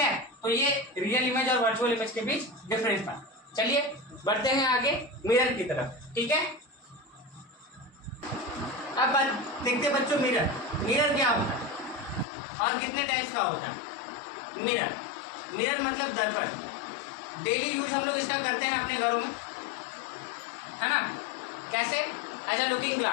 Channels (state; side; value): drops out; right; at 12.2 s